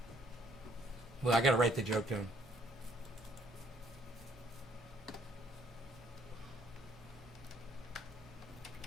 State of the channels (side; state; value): both; normal; correlation 0.64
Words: Well, I gotta write the joke down.